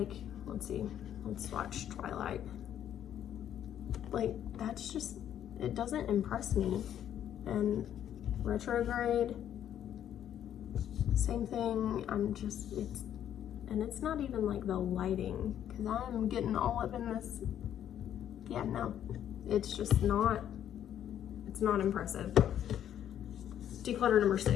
let's see, let's watch Twilight. Like, that's just, it doesn't impress me. And Retrograde, same thing. I'm just, and it's not even like the lighting, because I'm getting all up in this. Yeah, no, it's just not, it's not impressive. Declutter number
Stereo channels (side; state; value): right; quieter; 10.4 dB